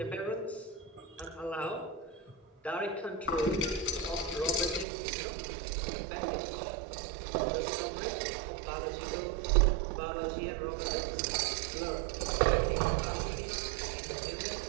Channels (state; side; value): drops out; left; at 4.9 s